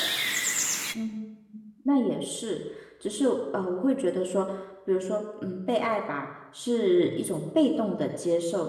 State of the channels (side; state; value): both; identical; correlation 1.00